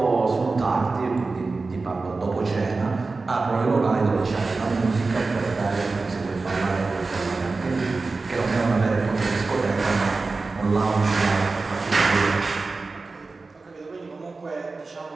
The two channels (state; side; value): quieter; left; 3.8 dB